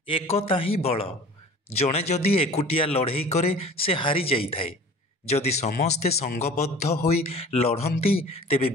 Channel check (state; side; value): normal; both; correlation 0.43